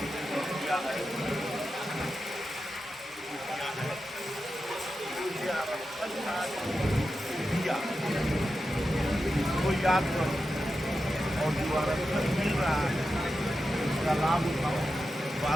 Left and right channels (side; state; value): both; normal; correlation 0.90